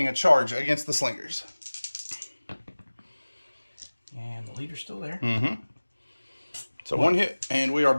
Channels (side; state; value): both; inverted; correlation -1.00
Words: a charge against the Slingers. And the leader's still there. Mm-hmm. So 1 hit, and we are